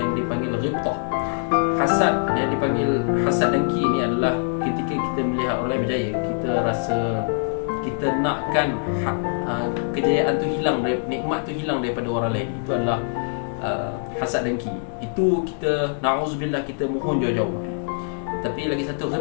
dipanggil ghibtah. Hasad yang dipanggil hasad dengki ni adalah ketika kita melihat orang lain berjaya, kita rasa kita nakkan kejayaan tu hilang, nikmat tu hilang daripada orang lain. Itu adalah hasad dengki. Itu kita, na'udzubillah, kita mohon jauh-jauh. Tapi lagi satu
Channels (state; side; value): silent; right; digital silence